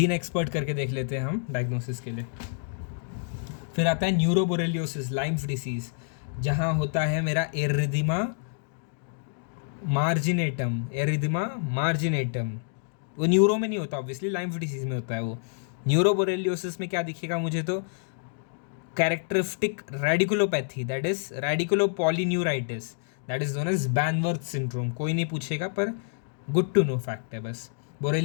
expert करके देख लेते हैं हम डायग्नोसिस के लिए। फिर आता है न्यूरोबोरेलियोसिस, लाइम्स डिसीज़, जहाँ होता है मेरा एरिथमा मार्जिनेटम। वो न्यूरो में नहीं होता ऑब्वियसली, लाइम्स डिसीज में होता है वो। न्यूरोबोरेलियोसिस में क्या दिखेगा मुझे, तो characteristic radiculopathy, that is radiculopolyneuritis, that is known as Banworth syndrome. कोई नहीं पूछेगा पर गुड टू नो फैक्ट है बस.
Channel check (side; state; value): right; silent; digital silence